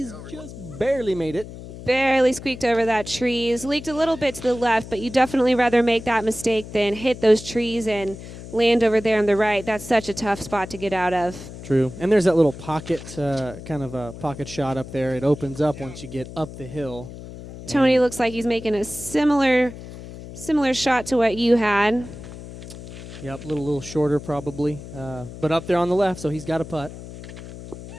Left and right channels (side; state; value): left; noise; hum, 13 dB below the sound